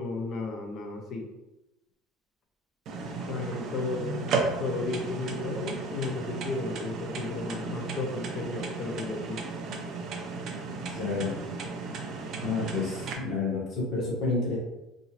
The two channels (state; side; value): normal; both; correlation 0.38